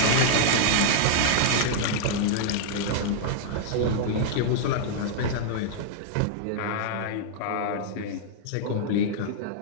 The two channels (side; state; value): both; different; correlation -0.01